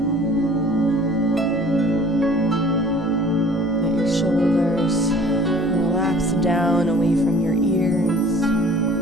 Shoulders relax down away from your ears.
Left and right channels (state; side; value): normal; both; correlation 0.49